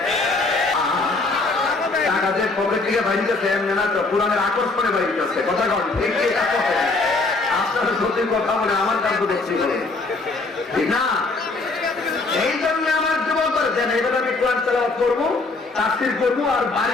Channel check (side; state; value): right; quieter; 3.5 dB